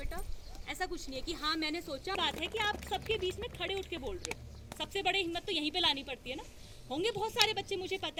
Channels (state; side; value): identical; both; correlation 1.00